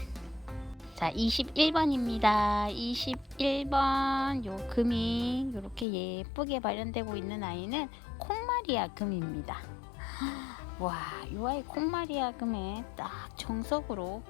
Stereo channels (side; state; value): right; drops out; at 5.9 s